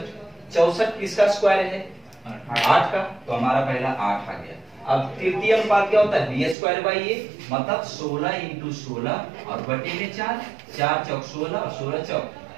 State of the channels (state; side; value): drops out; left; at 6.6 s